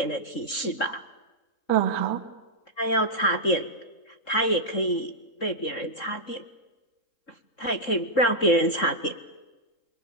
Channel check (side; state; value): right; late; 3.7 ms